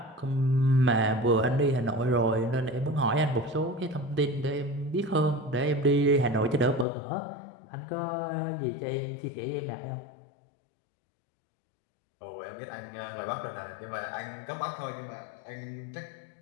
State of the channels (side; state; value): right; drops out; at 6.9 s